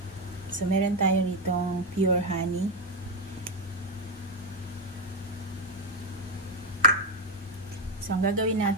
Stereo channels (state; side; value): normal; both; correlation 0.07